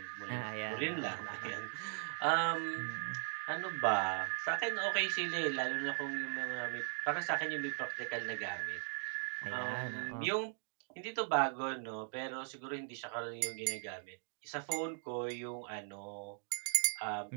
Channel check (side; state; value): left; silent; 52 dB below the other